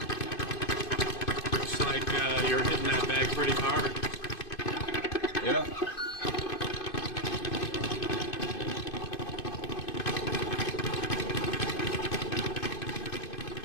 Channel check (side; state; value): right; late; 2.5 ms